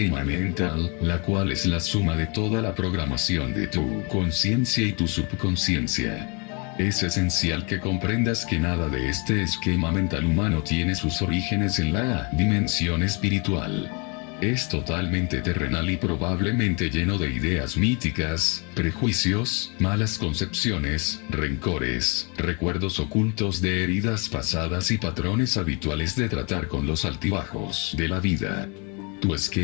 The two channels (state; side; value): quieter; right; 32.7 dB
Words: mental, la cual es la suma de toda la programación de tu conciencia y tu subconsciencia. Es esencial que comprendas que nada de este esquema mental humano tiene sus orígenes en la dimensión espiritual. Es totalmente terrenal y probablemente lleno de ideas míticas, prejuicios, malas concepciones, rencores, recuerdos ocultos de heridas pasadas y patrones habituales de tratar con los altibajos de la vida. Tu